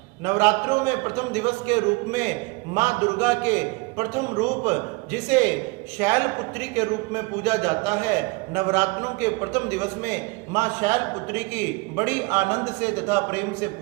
नवरात्रों में प्रथम दिवस के रूप में मां दुर्गा के प्रथम रूप जिसे शैलपुत्री के रूप में पूजा जाता है, नवरात्रों के प्रथम दिवस में मां शैलपुत्री की बड़ी आनंद से तथा प्रेम से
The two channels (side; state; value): left; quieter; 26.5 dB